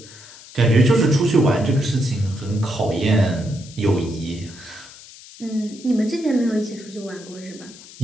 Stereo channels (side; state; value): left; noise; hiss, 19 dB below the sound